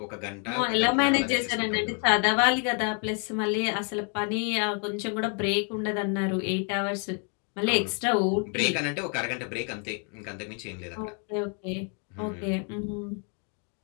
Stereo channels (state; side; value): quieter; right; 39.6 dB